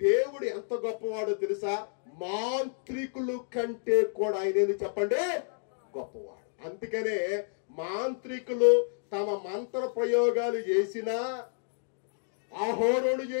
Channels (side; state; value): right; silent; digital silence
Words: ఎంత గొప్పవాడో తెలుసా? మాంత్రికులు కంటే కూడా ఆయన చెప్పండి గొప్పవాడు. అందుకనే మాంత్రికులు తమ మంత్ర ప్రయోగాలు చేసినా, అహోరోను